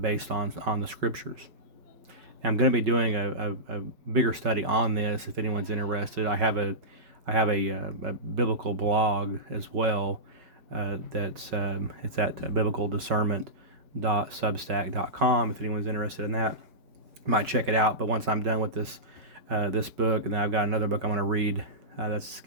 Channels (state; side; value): late; left; 5.3 ms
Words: on the scriptures. I'm going to be doing a bigger study on this if anyone's interested. I have a biblical blog as well. It's at biblicaldiscernment.substack.com. If anyone's interested in that, you might check it out. But once I'm done with this book, and then I've got another book I'm going to read that's